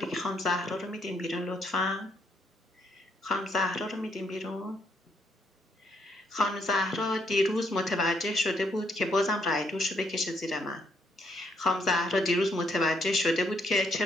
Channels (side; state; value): both; normal; correlation 0.72